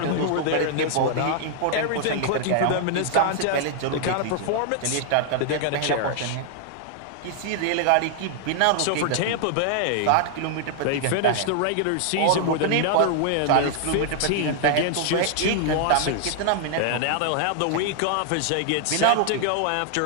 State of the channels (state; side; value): different; both; correlation 0.00